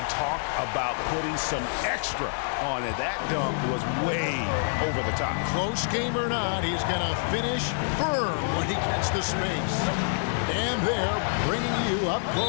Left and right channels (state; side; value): silent; right; digital silence